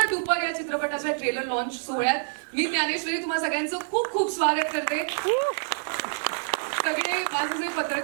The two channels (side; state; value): left; silent; digital silence